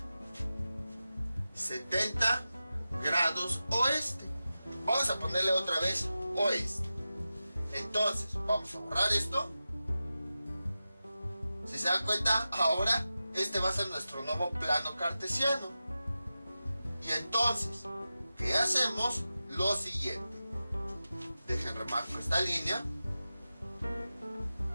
70 grados oeste. Vamos a ponerle otra vez oeste. Entonces, vamos a borrar esto. Si se dan cuenta, ahora este va a ser nuestro nuevo plano cartesiano. Y entonces, ¿qué hacemos? Lo siguiente. Dejen remarco esta línea.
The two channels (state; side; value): inverted; both; correlation -0.94